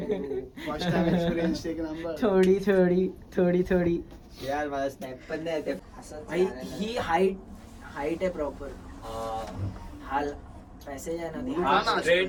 फर्स्ट टाइम एक्सपिरियन्स एक नंबर. थोडी यार मला स्नॅप पण नाही येते. भाई ही हाईट आहे प्रॉपर. हा पॅसेज आहे ना हा ना.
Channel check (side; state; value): both; identical; correlation 1.00